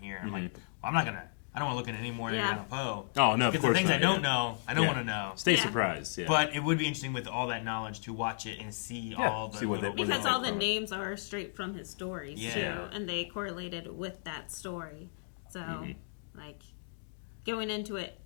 I'm like, well, I'm not going to, I don't want to look at any more than Edgar Allan Poe. Oh, no, of Because course the things not, I don't yeah. know, I don't Yeah. want to know. Stay surprised, yeah. But it would be interesting with all that knowledge to watch it and see all the see what little- Because all the names are straight from his stories, Yeah. too, and they correlated with that story. So, like, going into it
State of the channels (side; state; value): right; silent; digital silence